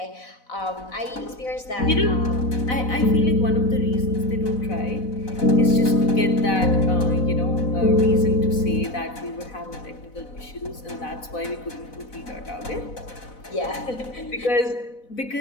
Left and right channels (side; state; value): right; late; 4.0 ms